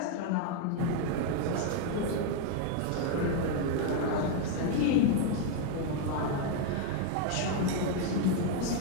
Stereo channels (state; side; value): different; both; correlation 0.00